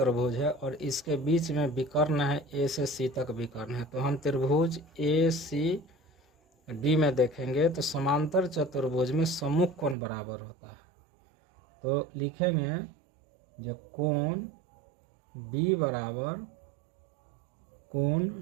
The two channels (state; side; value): drops out; left; at 10.0 s